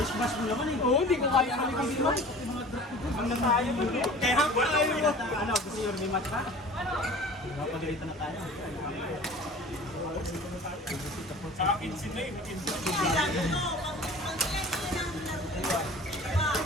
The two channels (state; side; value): normal; both; correlation 0.43